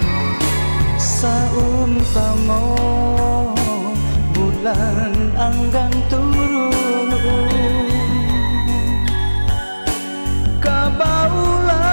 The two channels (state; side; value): inverted; both; correlation -1.00